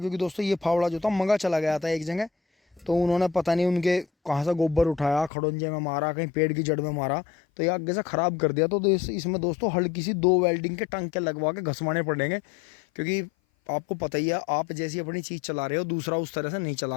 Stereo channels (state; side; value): drops out; right; at 5.3 s